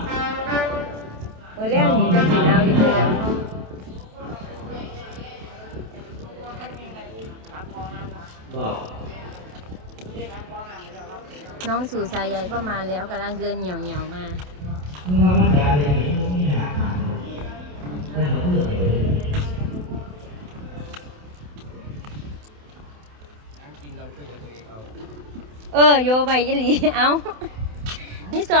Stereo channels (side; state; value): left; late; 28 ms